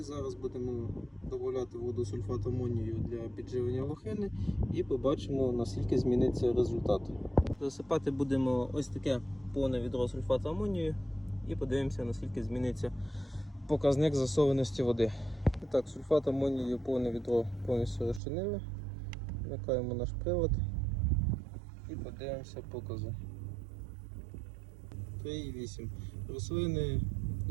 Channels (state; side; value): drops out; left; at 18.2 s